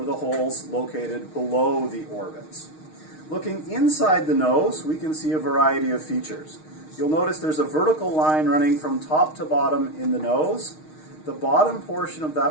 the holes located below the orbits. Looking inside the nose, we can see a variety of features. You'll notice there's a vertical line running from top to bottom in the nose. The bottom portion of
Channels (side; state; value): right; late; 6.4 ms